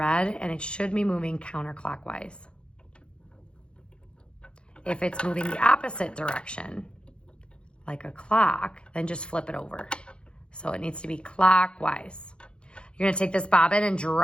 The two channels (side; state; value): right; late; 0.055 ms